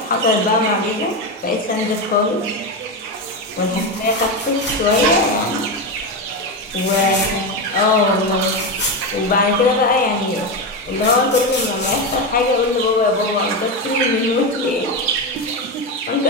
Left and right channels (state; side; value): normal; both; correlation 0.14